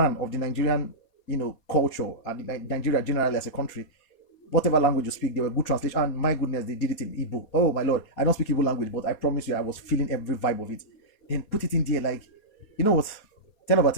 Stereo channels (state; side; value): late; right; 4.2 ms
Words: of the Nigerian, culture and Nigeria generally as a country, whatever language you speak, they were good translation. And my goodness, they did it in Igbo. Oh my lord, I don't speak Igbo language, but I promise you, I was feeling every vibe of it. Then put it in there, like, you know what? 10 over